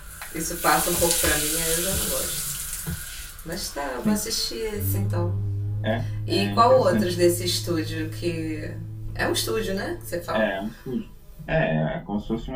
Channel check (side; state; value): both; identical; correlation 1.00